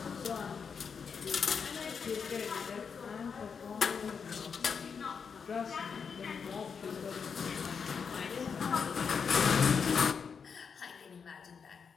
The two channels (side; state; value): right; quieter; 6.1 dB